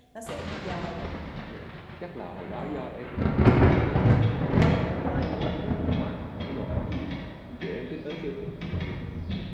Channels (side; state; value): both; identical; correlation 1.00